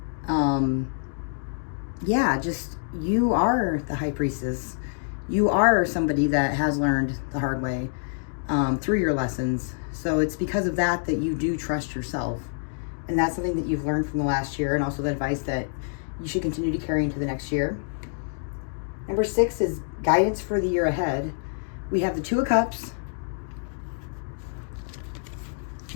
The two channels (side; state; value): right; silent; digital silence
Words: You are the High Priestess. You are somebody that has learned the hard way through your lessons. So it's because of that you do trust yourself. And that's something that you've learned from the last year, and also the advice that you should continue to carry into the next year. Number 6 is guidance for the year ahead. We have the 2 of Cups,